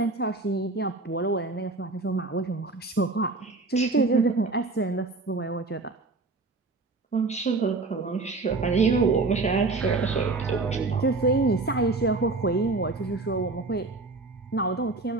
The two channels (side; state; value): left; quieter; 3.5 dB